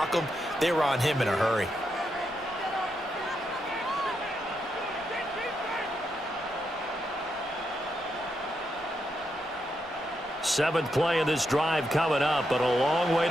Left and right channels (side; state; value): left; noise; rumble, 25 dB below the sound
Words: them. They were on him in a hurry. Seventh play of this drive coming up, but a long way